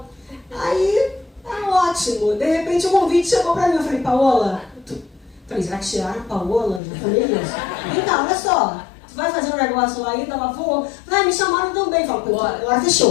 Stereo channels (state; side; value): drops out; right; at 6.8 s